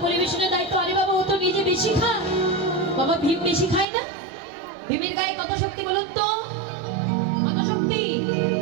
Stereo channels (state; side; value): drops out; left; at 3.9 s